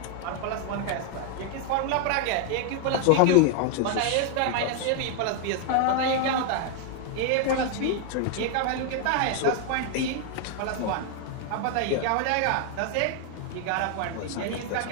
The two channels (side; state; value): both; different; correlation 0.00